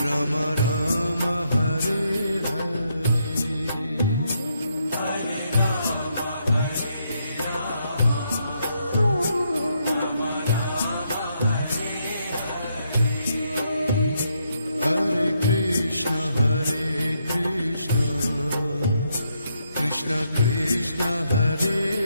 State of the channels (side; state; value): both; inverted; correlation -0.77